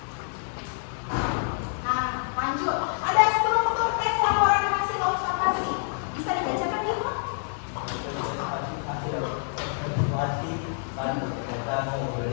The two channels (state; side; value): silent; right; digital silence